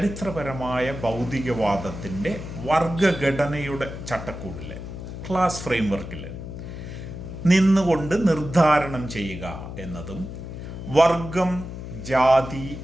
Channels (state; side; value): noise; left; hum, 9 dB below the sound